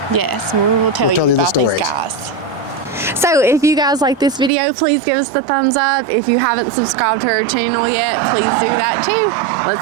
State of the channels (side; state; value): left; drops out; at 4.5 s